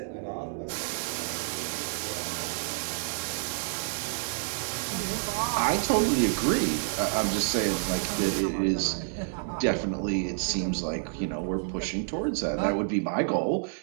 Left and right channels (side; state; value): left; silent; 59 dB below the other